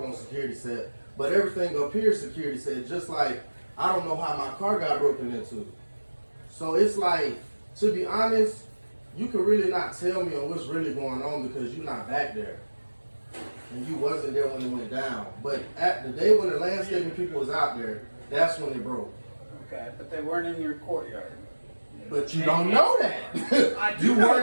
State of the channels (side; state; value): both; inverted; correlation -1.00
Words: on security set. But everything up here is security set. Just like, I don't know how my car got broken into. So it's like, to be honest, you can really not tell me on what's really going on because you're not back there. And you wasn't there when it went down. But at the day when the landscaping people was out there, that's when it broke. Okay, but they weren't in your courtyard. But you don't know that. I do You know